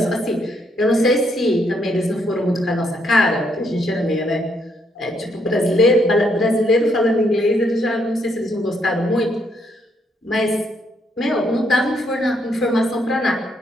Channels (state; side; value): normal; both; correlation 0.74